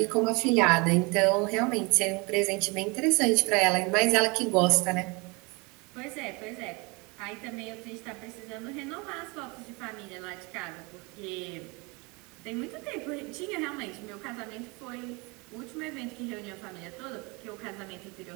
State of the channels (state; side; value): quieter; left; 28.0 dB